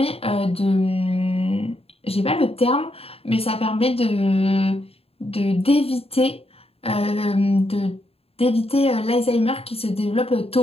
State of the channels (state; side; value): late; right; 0.28 ms